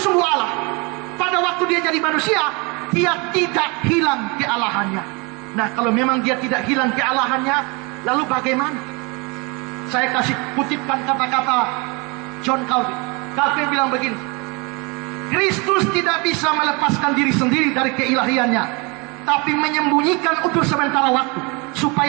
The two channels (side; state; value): left; quieter; 29.1 dB